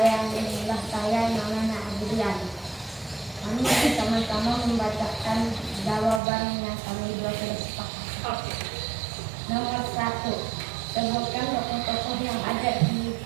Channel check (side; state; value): left; drops out; at 6.2 s